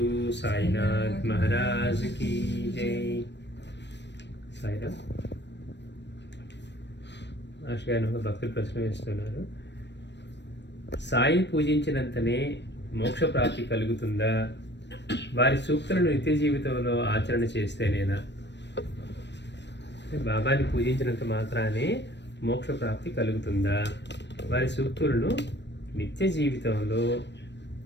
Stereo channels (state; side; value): late; right; 0.51 ms